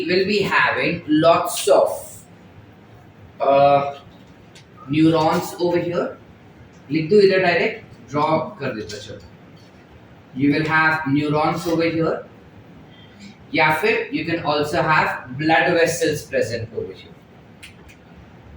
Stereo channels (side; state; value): both; identical; correlation 1.00